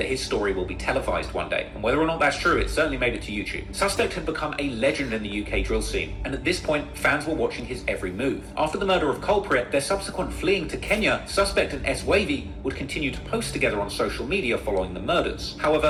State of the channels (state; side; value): identical; both; correlation 1.00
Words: his story will be televised one day, and whether or not that's true, it certainly made it to YouTube. Suspect had become a legend in the UK drill scene, and at this point, fans were watching his every move. After the murder of Culprit, their subsequent fleeing to Kenya, Suspect and S-Wavy would continue to post together on social media following the murders.